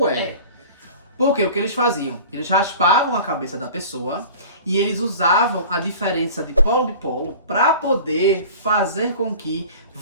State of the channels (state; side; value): inverted; both; correlation -0.40